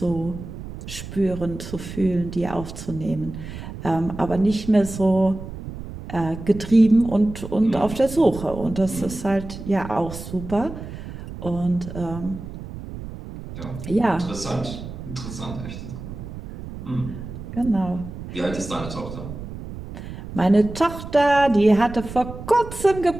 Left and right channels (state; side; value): noise; right; rumble, 11 dB below the sound